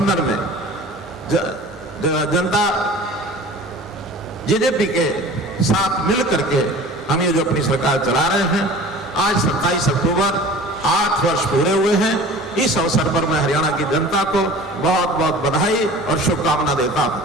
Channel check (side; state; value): both; normal; correlation 0.42